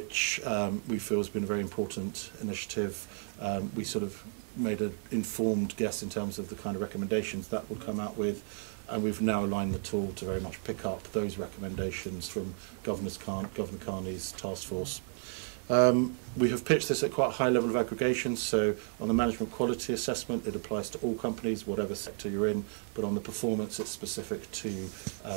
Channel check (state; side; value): silent; left; 56 dB below the other